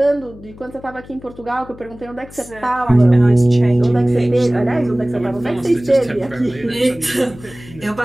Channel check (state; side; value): noise; left; hum, 19 dB below the sound